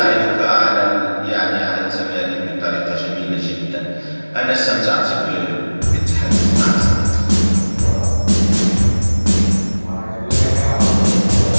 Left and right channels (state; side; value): inverted; both; correlation -1.00